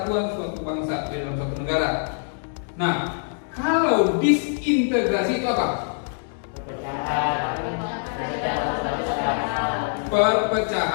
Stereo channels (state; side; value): silent; right; digital silence